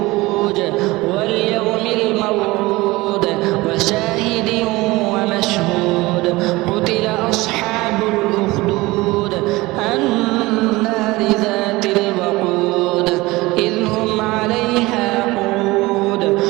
واليوم الموعود وشاهد ومشهود قتل أصحاب الأخدود النار ذات الوقود إذ هم عليها قعود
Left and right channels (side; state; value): left; quieter; 20.8 dB